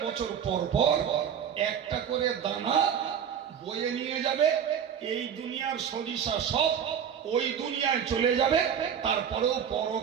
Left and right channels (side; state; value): left; quieter; 8.3 dB